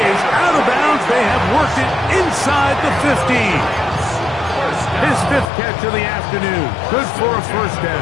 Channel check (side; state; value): right; drops out; at 5.5 s